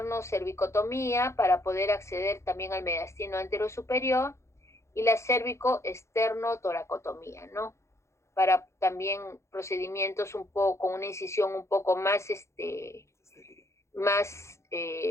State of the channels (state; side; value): late; right; 0.14 ms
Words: para poder acceder también al mediastino anterosuperior, y la cervicoesternotoracotomía, ¿no? Para también procedimientos un poco con una incisión un poco más